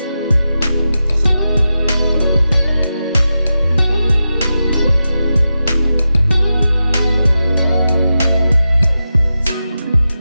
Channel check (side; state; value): both; inverted; correlation -0.90